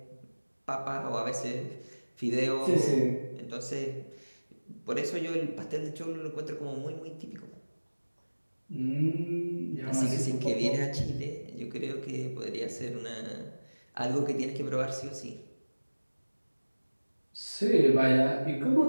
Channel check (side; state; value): both; inverted; correlation -1.00